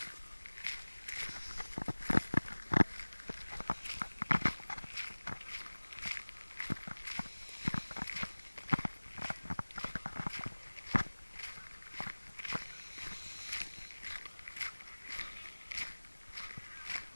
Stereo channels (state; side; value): inverted; both; correlation -1.00